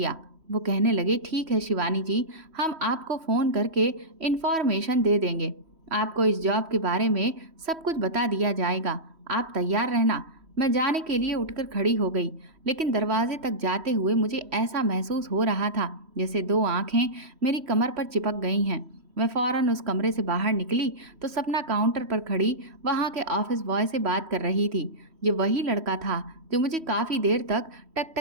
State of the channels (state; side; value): late; left; 3.1 ms